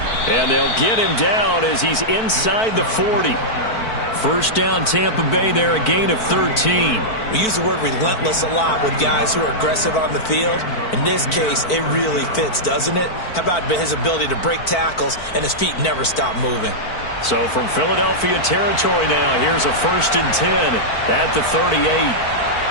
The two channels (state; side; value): late; right; 4.5 ms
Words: And they'll get him down as he's inside the 40. First down, Tampa Bay there, a gain of 13. We use the word relentless a lot with guys who are aggressive on the field. In this case, it really fits, doesn't it? How about his ability to break tackles and his feet never stop moving? So from Philadelphia territory now, here's a 1st and 10 at the 38.